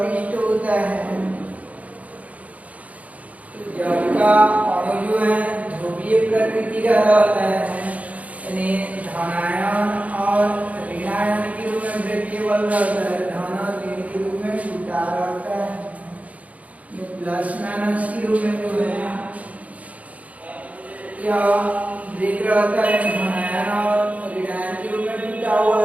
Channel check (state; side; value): late; left; 0.069 ms